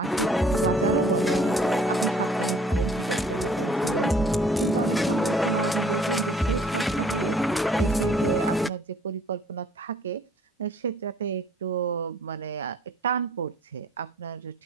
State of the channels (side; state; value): both; normal; correlation 0.58